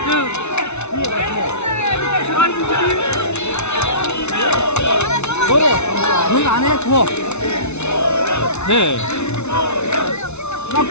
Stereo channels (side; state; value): right; late; 0.81 ms